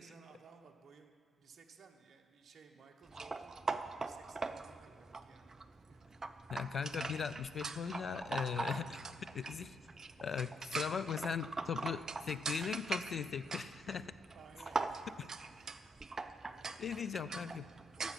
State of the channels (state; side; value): normal; both; correlation 0.76